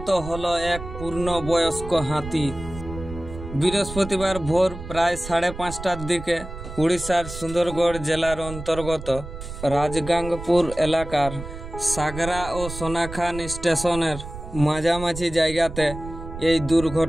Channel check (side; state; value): right; noise; rumble, 11 dB below the sound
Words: হলো এক পূর্ণবয়স্ক হাতি। বৃহস্পতিবার ভোর প্রায় 5:30টার দিকে উড়িষ্যার সুন্দরগড় জেলার অন্তর্গত রাজগাঙ্গপুর এলাকার সাগরা ও সোনাখান স্টেশনের মাঝামাঝি জায়গাতে এই